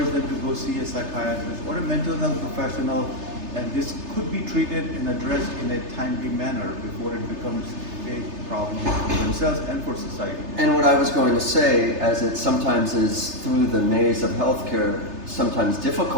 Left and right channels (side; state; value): left; late; 3.3 ms